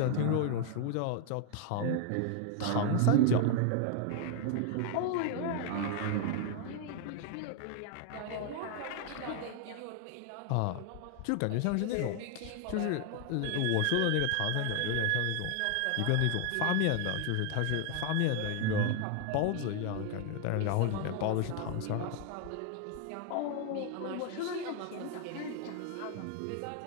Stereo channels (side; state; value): both; different; correlation 0.00